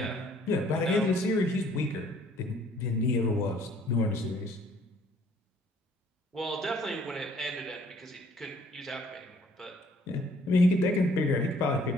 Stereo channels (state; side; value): normal; both; correlation 0.60